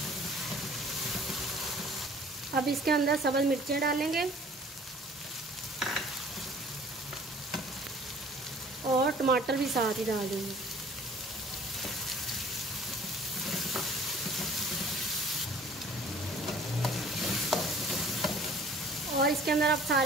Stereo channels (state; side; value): normal; both; correlation 0.52